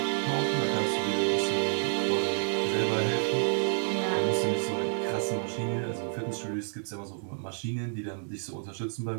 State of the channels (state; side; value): silent; left; 58 dB below the other